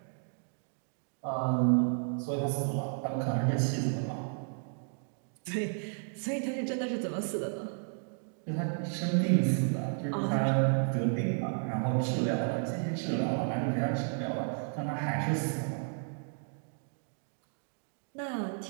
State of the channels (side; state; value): left; silent; 56 dB below the other